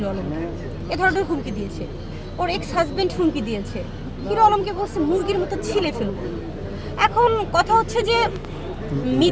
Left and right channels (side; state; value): both; identical; correlation 1.00